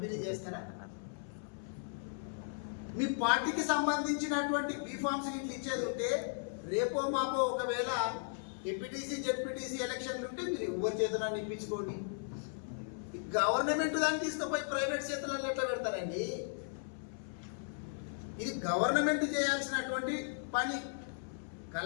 చేస్తారా? మీ పార్టీకి సంబంధించినటువంటి బీఫామ్స్ ఇట్లా ఇచ్చేది ఉంటే రేపో మాపో ఒకవేళ ఎంపీటీసీ జెడ్పీటీసీ ఎలక్షన్లు ఉంటే మీరు ఎవరి చేతులను ఇప్పించుకోండి. గవర్నమెంట్ దాన్ని తీసుకుపోయి ప్రైవేట్ చేతులలో ఎట్లా పెడతారండి? ఇది గవర్నమెంట్ చేయాల్సినటువంటి పని.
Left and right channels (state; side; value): silent; right; 54 dB below the other